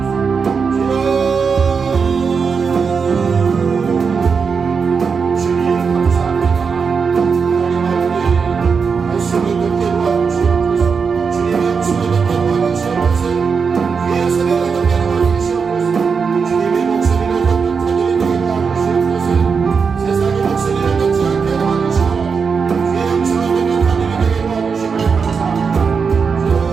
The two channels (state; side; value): quieter; left; 5.6 dB